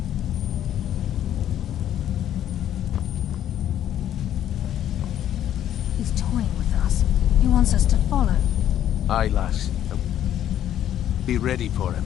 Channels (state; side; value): quieter; right; 11.0 dB